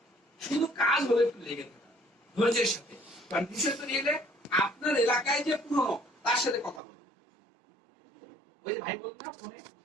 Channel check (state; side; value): drops out; left; at 6.8 s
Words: শুধু কাজ হলে একটু লেগে থাকা ধৈর্যের সাথে। কারণ বিষয় তো নিয়ে আপনার এলাকায় যে পুরনো তার সাথে কথা বলবো। ওই যে ভাই বলতো না ফোনে,